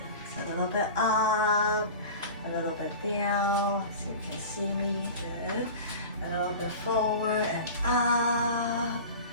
So a little bit up, a little bit down. So you can see me. Good. A little bit forward and up.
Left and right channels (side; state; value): both; inverted; correlation -0.35